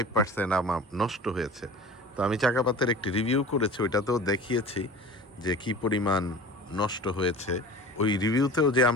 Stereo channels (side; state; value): both; normal; correlation 0.39